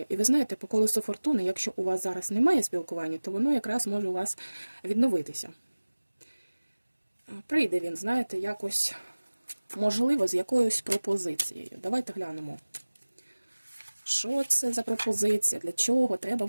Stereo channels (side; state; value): both; inverted; correlation -1.00